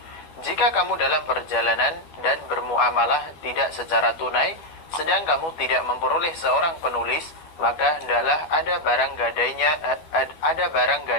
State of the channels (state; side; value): late; right; 12 ms